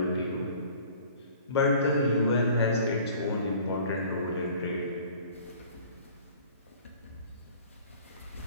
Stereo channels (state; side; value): inverted; both; correlation -0.50